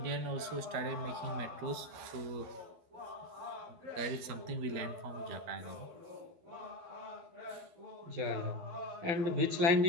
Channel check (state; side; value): late; left; 12 ms